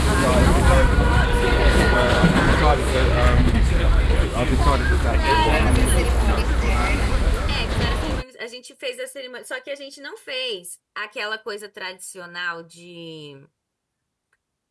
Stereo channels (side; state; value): both; identical; correlation 1.00